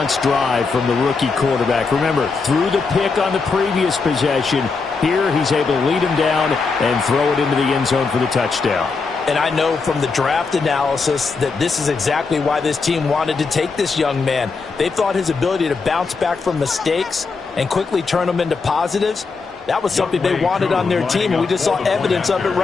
drive from the rookie quarterback. Remember, threw the pick on the previous possession. Here, he's able to lead him down and throw it into the end zone for the touchdown. And I know from the draft analysis that this is exactly why this team wanted to take this young man. They thought his ability to bounce back from mistakes and quickly turn them into positives, that was something they wanted on their team, and we just saw evidence of it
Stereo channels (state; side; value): quieter; right; 4.5 dB